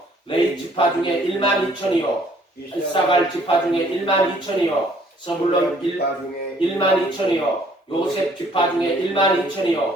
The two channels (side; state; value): both; normal; correlation 0.61